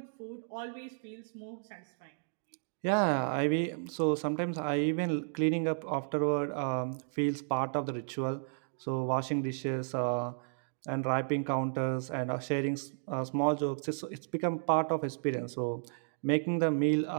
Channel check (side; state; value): left; silent; digital silence